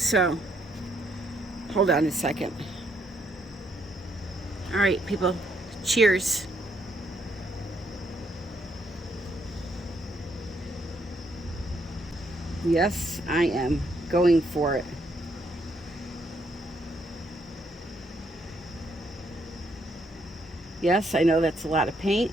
hold on a second. All right, people, cheers. Yes, I am going for it. Yes, I know that's a lot of paint,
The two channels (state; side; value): normal; both; correlation 0.73